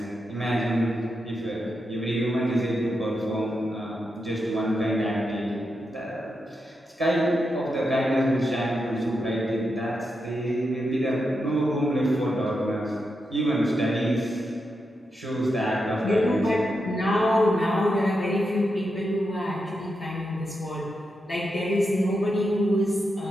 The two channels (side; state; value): both; normal; correlation 0.86